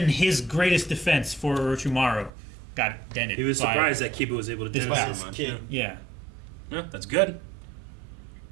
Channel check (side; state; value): left; drops out; at 2.3 s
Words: his greatest defense for Orochimaru got dented. He was by- surprised that Kiba was able to do This it last so much. kid. Yeah. Yeah, that's good.